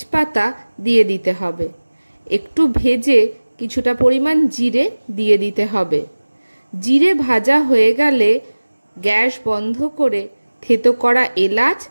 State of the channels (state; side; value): inverted; both; correlation -1.00